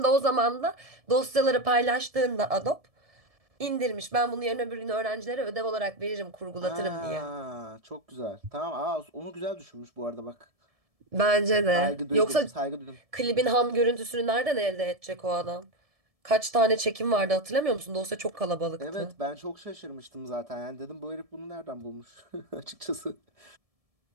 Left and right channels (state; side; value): late; left; 1.7 ms